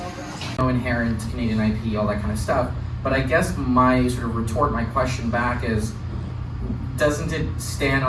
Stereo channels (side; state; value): both; identical; correlation 1.00